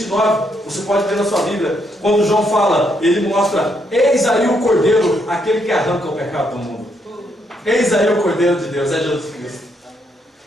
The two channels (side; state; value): both; normal; correlation 0.75